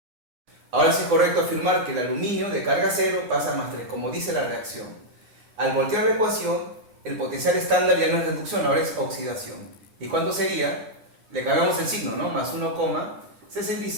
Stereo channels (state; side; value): late; left; 9.7 ms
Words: Ahora sí es correcto afirmar que el aluminio de carga 0 pasa a +3, como dice la reacción. Al voltear la ecuación, el potencial estándar ya no es reducción, ahora es oxidación. ¿Y cuánto sería? Le cambiamos el signo, ¿no? Más